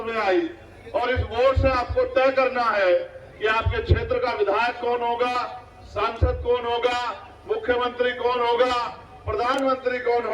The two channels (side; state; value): both; identical; correlation 1.00